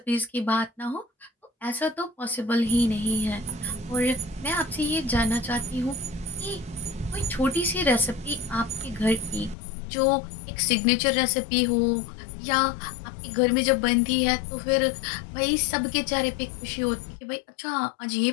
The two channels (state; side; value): drops out; right; at 9.6 s